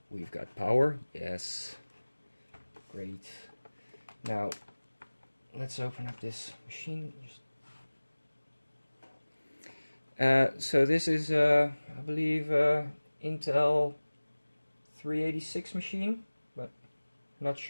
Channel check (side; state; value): both; inverted; correlation -1.00